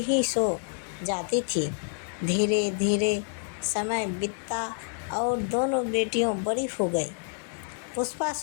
ही सो जाती थी। धीरे धीरे समय बीतता और दोनों बेटियों बड़ी हो गई। पुष्पा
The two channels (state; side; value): silent; right; 55 dB below the other